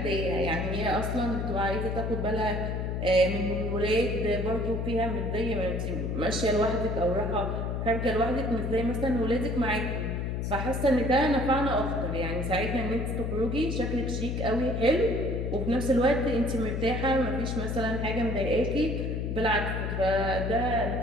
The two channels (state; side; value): noise; left; hum, 2 dB below the sound